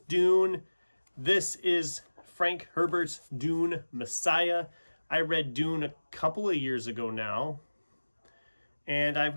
Dune. This is Frank Herbert's Dune Messiah. I read Dune a couple of years ago now. And I've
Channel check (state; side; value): inverted; both; correlation -1.00